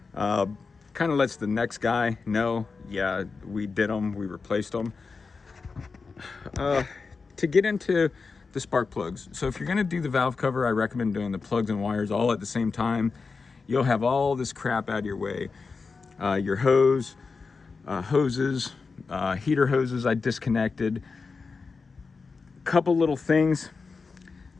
Kind of lets the next guy know, yeah, we did them, we replaced them. To get into the spark plugs. So if you're gonna do the valve cover, I recommend doing the plugs and wires all at the same time. You'll have all this crap out of your way. Your hoses, heater hoses I disconnected. Couple little things.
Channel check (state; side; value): quieter; right; 4.6 dB